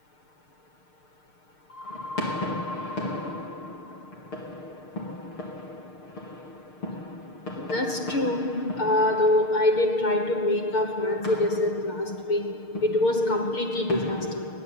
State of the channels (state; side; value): late; right; 6.6 ms